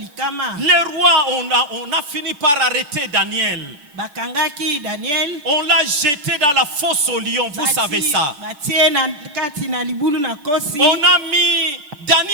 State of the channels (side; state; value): left; late; 6.9 ms